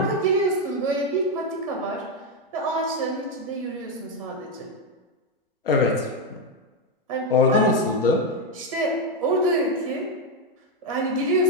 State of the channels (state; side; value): normal; both; correlation 0.05